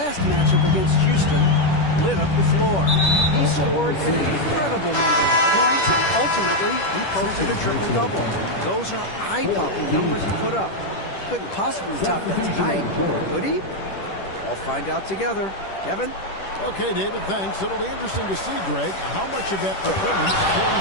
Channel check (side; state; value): right; late; 10 ms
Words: matchup against Houston, lit up the floor. He scored an incredible number of points, and ultimately, he posted a triple-double. Those are eye-popping numbers he put up. Couldn't possibly top that tonight, could he? We'll find out together. Kevin? Okay, David, thanks. It'll be interesting to see, Greg, how much of that performance